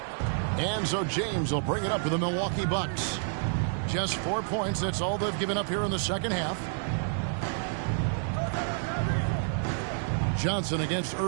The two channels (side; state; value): left; silent; digital silence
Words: And so James will bring it up for the Milwaukee Bucks. Just 4 points. That's all they've given up here in the second half. Johnson against